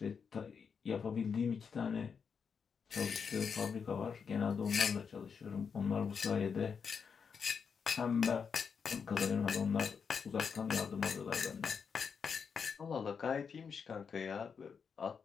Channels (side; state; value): right; quieter; 6.2 dB